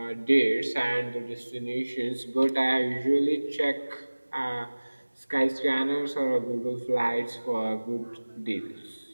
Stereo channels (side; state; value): both; inverted; correlation -1.00